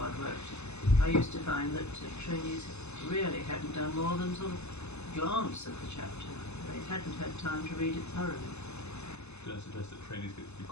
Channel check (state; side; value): late; right; 0.81 ms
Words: worked. I used to find that trainees really hadn't done more than sort of glance at the chapter. They hadn't had time to read it thoroughly. Don't suggest that trainees get to be